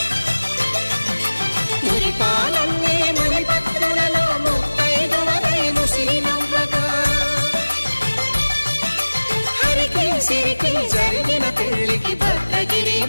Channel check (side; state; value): both; inverted; correlation -1.00